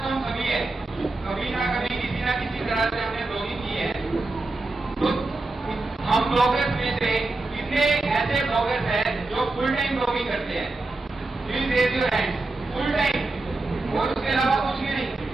तो हम सभी है, कभी ना कभी किसी ना किसी तरह से हमने ब्लॉगिंग की है। तो हम ब्लॉगर्स में से कितने ऐसे ब्लॉगर्स हैं जो फुल टाइम ब्लॉगिंग करते हैं? Please raise your hand. Full time और उसके अलावा कुछ भी नहीं।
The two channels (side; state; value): left; quieter; 3.1 dB